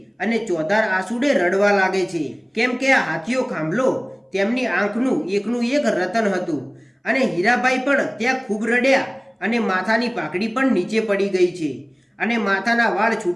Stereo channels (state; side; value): identical; both; correlation 1.00